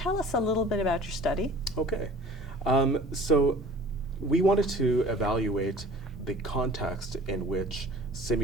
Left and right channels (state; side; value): normal; both; correlation 0.47